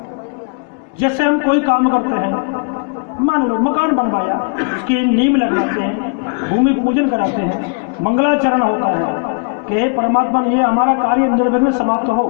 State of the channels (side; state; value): right; quieter; 35.5 dB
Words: जैसे हम कोई काम करते हैं, मान लो मकान बनवाया, उसकी नींव लगवाते हैं, भूमि पूजन कराते हैं, मंगलाचरण होता है कि हे परमात्मा ये हमारा कार्य निर्विघ्न समाप्त हो।